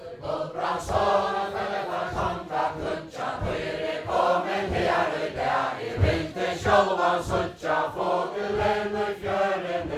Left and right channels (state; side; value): identical; both; correlation 1.00